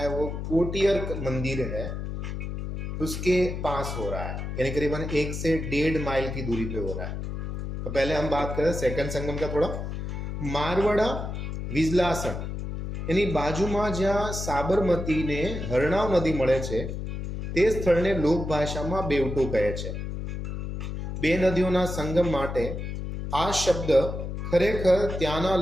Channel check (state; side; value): noise; left; hum, 5 dB below the sound